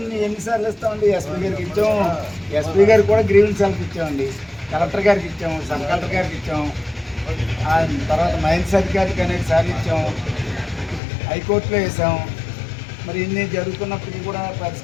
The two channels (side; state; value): right; drops out; at 11.0 s